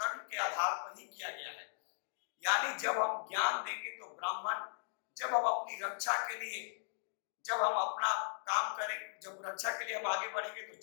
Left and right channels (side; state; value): right; silent; digital silence